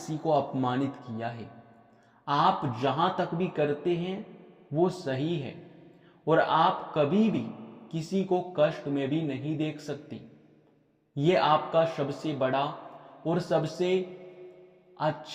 को अपमानित किया है। आप जहां तक भी करते हैं वो सही है, और आप कभी भी किसी को कष्ट में भी नहीं देख सकते। ये आपका सबसे बड़ा और सबसे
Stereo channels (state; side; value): identical; both; correlation 1.00